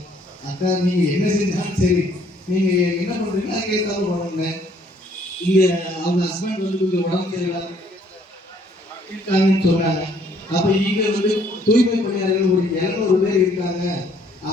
அக்கா நீங்கள் என்ன செஞ்சாலும் சரி, நீங்கள் என்ன பண்ணுறீங்களோ அதுக்கு ஏற்றாலும் பண்ணுங்க. இங்கே அவங்க ஹஸ்பண்ட் வந்து கொஞ்சம் உடம்பு சரியில்லாம இருக்காங்கன்னு சொன்னாங்க. அப்போ இங்கே வந்து தூய்மை பணியாளர்கள் ஒரு 200 பேர் இருக்காங்க,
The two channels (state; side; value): normal; both; correlation 0.63